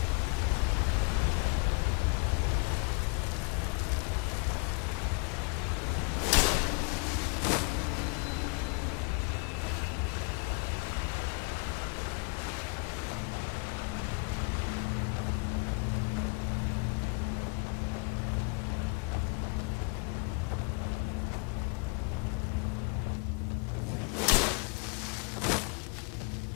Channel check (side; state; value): right; quieter; 31.9 dB